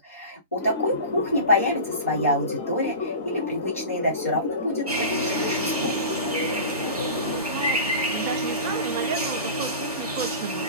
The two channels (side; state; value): both; inverted; correlation -0.32